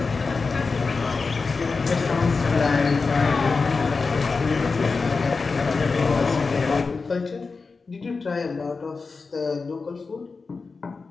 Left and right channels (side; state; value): right; quieter; 4.4 dB